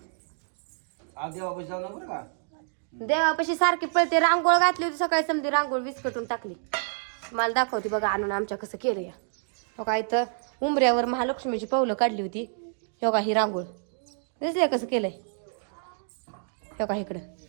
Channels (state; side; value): silent; left; digital silence